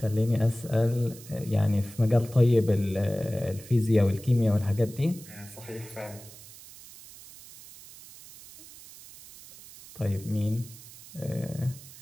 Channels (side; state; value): right; noise; hiss, 18 dB below the sound